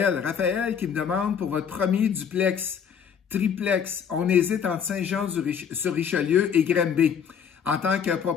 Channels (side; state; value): right; quieter; 7.5 dB